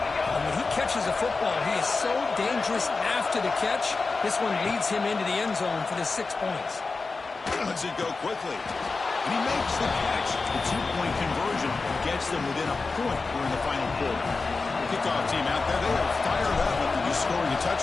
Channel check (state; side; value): quieter; right; 4.0 dB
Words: when he catches a football, he is so dangerous after the catch. This one leads him into the end zone for the 6 points. Lets it go quickly. And he makes the catch. The 2-point conversion gets them within a point during the final quarter. The kickoff team out there, they are fired up after just scoring a